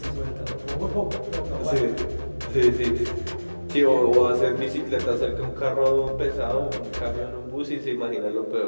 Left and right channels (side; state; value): both; inverted; correlation -1.00